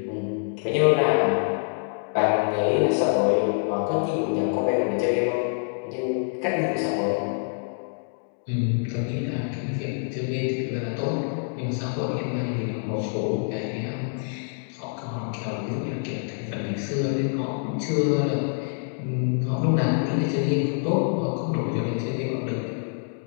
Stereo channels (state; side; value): silent; right; digital silence